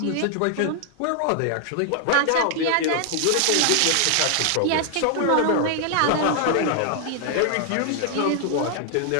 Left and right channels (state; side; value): different; both; correlation 0.00